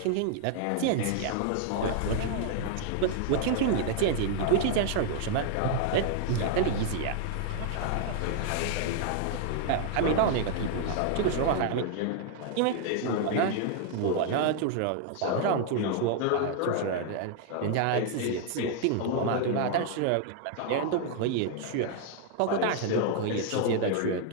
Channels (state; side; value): different; both; correlation 0.00